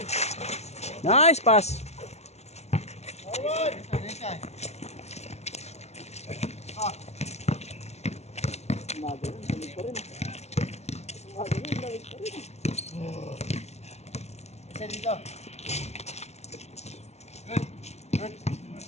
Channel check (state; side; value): late; right; 0.32 ms